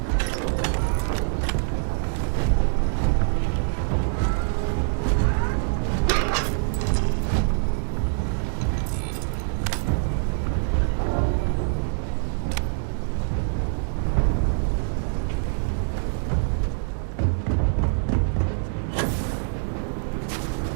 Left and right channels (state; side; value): silent; left; digital silence